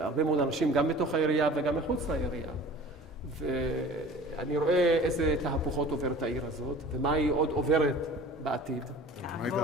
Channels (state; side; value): normal; both; correlation 0.43